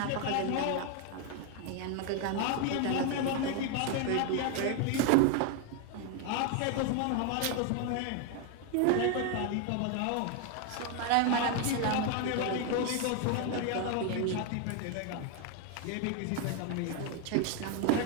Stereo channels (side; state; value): both; different; correlation 0.01